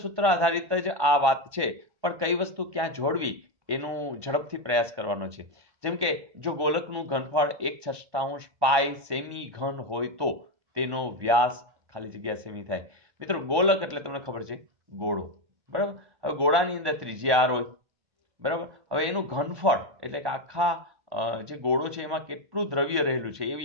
સૂત્ર આધારિત જ આ વાત છે, પણ કઈ વસ્તુ ક્યાં જોડવી એનું ઝડપથી પ્રયાસ કરવાનો છે. જેમ કે જો ગોલકનું ઘનફળ 1/6 પાઈ સેમી ઘન હોય તો તેનો વ્યાસ ખાલી જગ્યા સેમી થાય. મિત્રો ગોલક એટલે તમને ખબર છે ગોળો, બરાબર. હવે ગોળાની અંદર ત્રિજ્યા r હોય, બરાબર. હવે એનું ઘનફળ એટલે કે આખા જે ગોળો છે એમાં કેટલું દ્રવ્ય રહેલું છે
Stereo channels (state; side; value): late; left; 1.2 ms